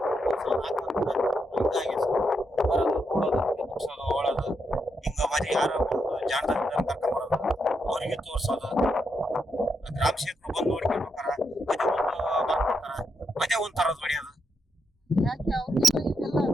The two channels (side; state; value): both; normal; correlation 0.81